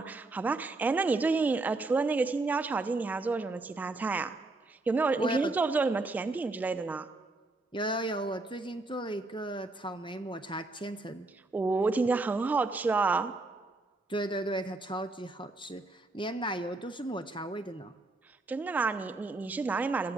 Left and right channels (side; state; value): left; quieter; 3.2 dB